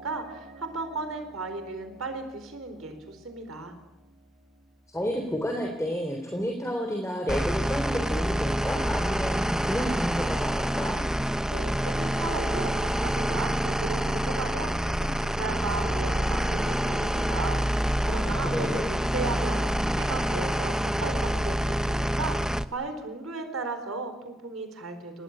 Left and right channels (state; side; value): normal; both; correlation 0.84